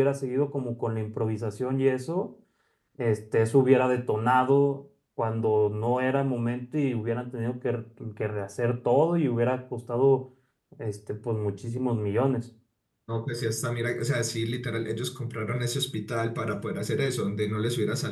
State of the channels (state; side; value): identical; both; correlation 1.00